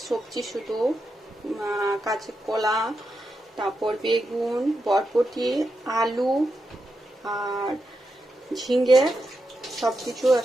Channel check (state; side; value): normal; both; correlation 0.86